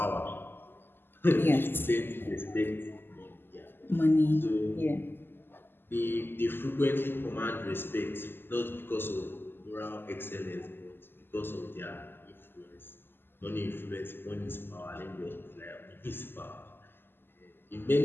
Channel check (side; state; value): right; late; 0.10 ms